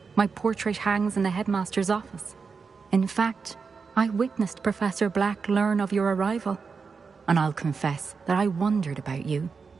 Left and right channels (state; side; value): quieter; left; 5.2 dB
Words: My portrait hangs in the headmaster's office. In fact, I witnessed Professor Black learn of your arrival. And I'll confess that I wondered about you.